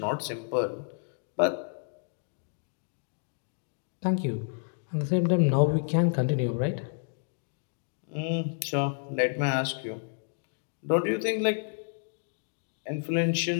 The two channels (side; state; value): right; silent; digital silence